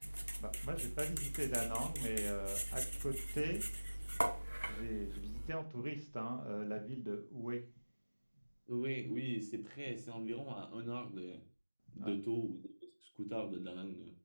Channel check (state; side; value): inverted; both; correlation -1.00